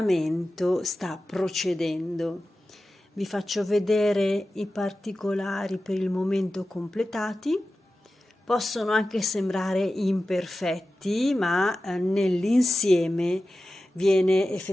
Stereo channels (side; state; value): both; normal; correlation 0.94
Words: sta procedendo. Vi faccio vedere i particolari per il momento completati. Possono anche sembrare imperfetti, ma nell'insieme viene